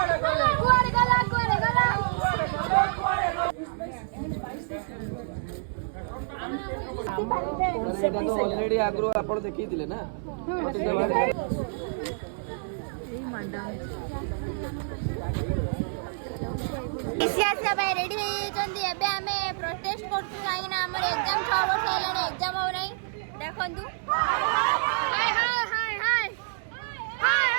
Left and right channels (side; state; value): left; silent; digital silence